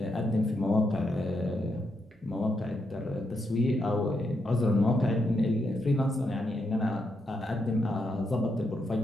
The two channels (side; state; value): both; normal; correlation 0.81